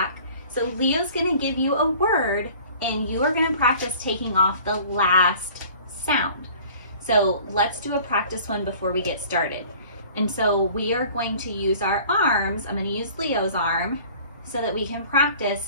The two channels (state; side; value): inverted; both; correlation -0.48